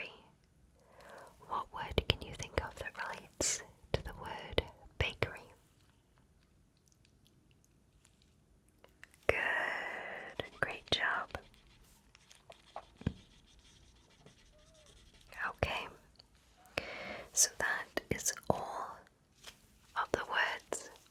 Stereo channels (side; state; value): both; identical; correlation 1.00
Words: What word can you think of that relates to the word bakery? Good. Great job. Okay. So that is all of the words.